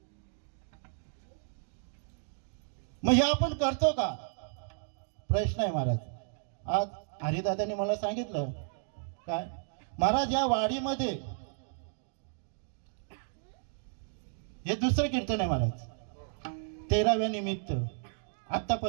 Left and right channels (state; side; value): silent; left; digital silence